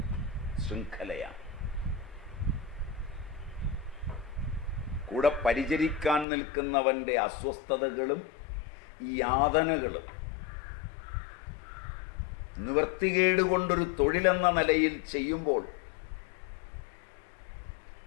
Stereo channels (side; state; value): right; drops out; at 6.2 s